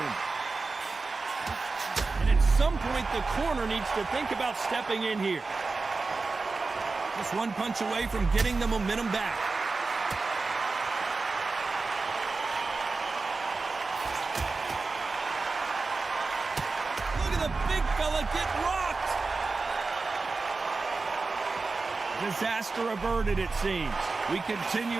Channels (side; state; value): left; quieter; 4.0 dB